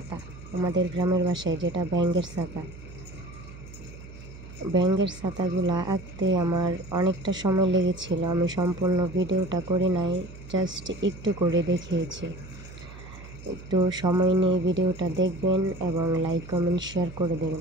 আমাদের গ্রামের বাসায় যেটা ব্যাঙের ছাতা। ব্যাঙের ছাতাগুলা আঁকতে আমার অনেকটা সময় লেগেছিল। আমি সম্পূর্ণ ভিডিওটা করি নাই, জাস্ট একটু করে দেখিয়েছি। একটু সময় নিয়ে ভিডিওটা দেখবেন এবং লাইক কমেন্ট শেয়ার করে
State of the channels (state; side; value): noise; right; hum, 16 dB below the sound